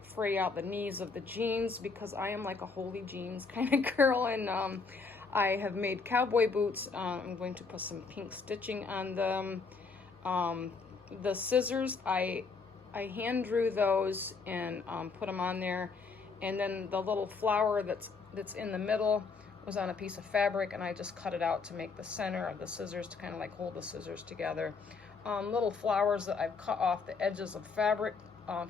fray out the knees of the jeans because I am like a holy jeans kind of girl, and I have made cowboy boots. I'm going to put some pink stitching on them. The scissors, I hand drew those and put them on there, and then the little flower that's in the middle was on a piece of fabric, and I just cut it out to make the center of the scissors to kind of like hold the scissors together. Little flowers that I've cut off the edges of fabric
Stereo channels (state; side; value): quieter; right; 4.7 dB